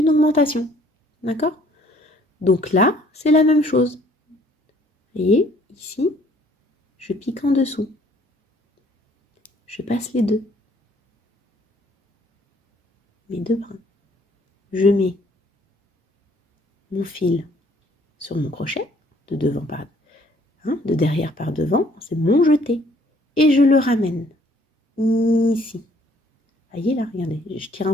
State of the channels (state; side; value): normal; both; correlation 0.61